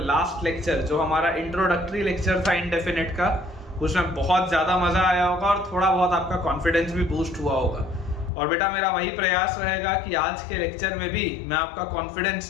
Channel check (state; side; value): drops out; right; at 8.3 s